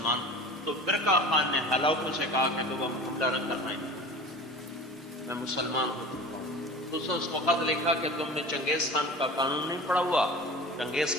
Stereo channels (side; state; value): both; normal; correlation 0.37